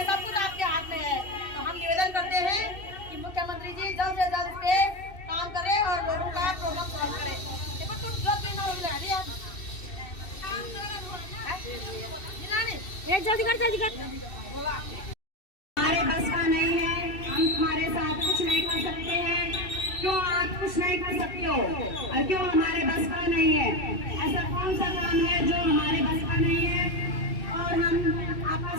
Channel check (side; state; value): right; late; 2.6 ms